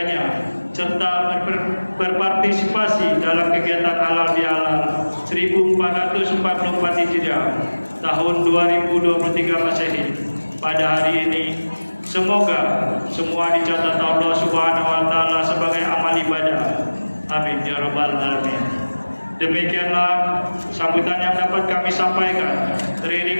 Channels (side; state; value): both; inverted; correlation -1.00